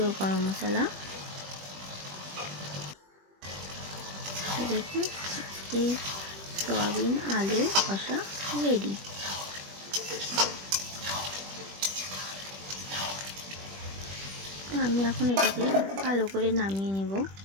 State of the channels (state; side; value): late; left; 21 ms